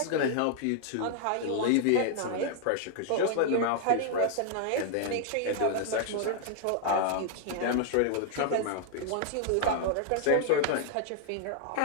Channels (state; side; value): different; both; correlation -0.01